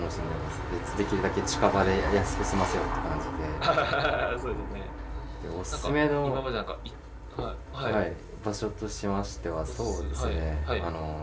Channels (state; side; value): identical; both; correlation 1.00